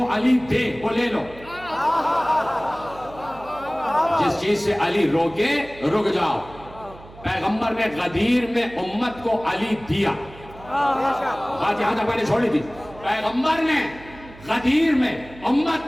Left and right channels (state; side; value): noise; right; hum, 20 dB below the sound